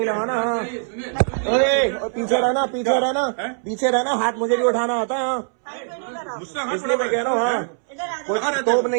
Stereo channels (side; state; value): left; silent; 64 dB below the other